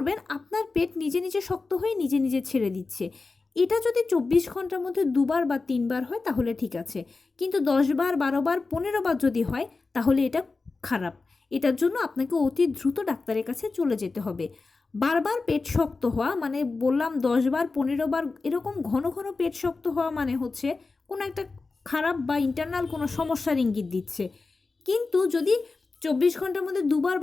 আপনার পেট নিজে নিজে শক্ত হয়ে নিজে নিজে ছেড়ে দিচ্ছে। এটা যদি 24 ঘন্টার মধ্যে 2বার বা 3বার হয় তাহলে ঠিক আছে, কিন্তু 10বার, 12বার, 15বার যদি হয় তাহলে এটা খারাপ। এটার জন্য আপনাকে অতি দ্রুত ডাক্তারের কাছে চলে যেতে হবে। বারবার পেট শক্ত হওয়া মানে বললাম 10বার, 15বার এরকম ঘন ঘন পেট শক্ত হওয়া মানে হচ্ছে কোনো একটা খারাপ বা ইন্টারনাল কোনো সমস্যার ইঙ্গিত দিচ্ছে। কিন্তু যদি 24 ঘন্টার মধ্যে 2বার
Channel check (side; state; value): right; quieter; 3.9 dB